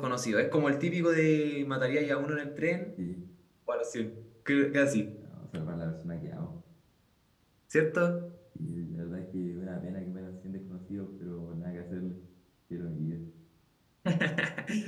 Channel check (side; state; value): both; identical; correlation 1.00